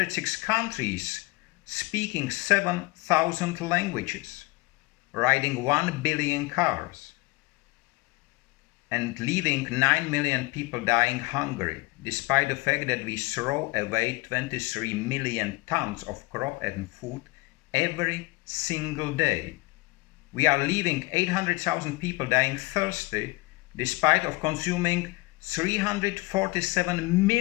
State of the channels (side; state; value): right; quieter; 23.4 dB